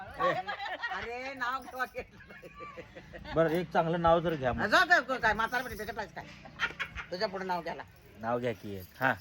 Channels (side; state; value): both; identical; correlation 1.00